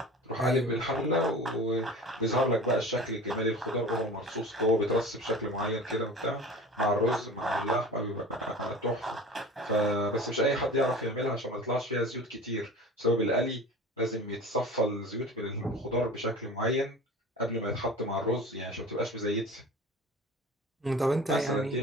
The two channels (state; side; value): normal; both; correlation 0.38